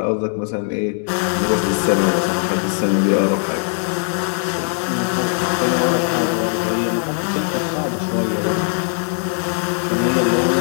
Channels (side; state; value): right; silent; 56 dB below the other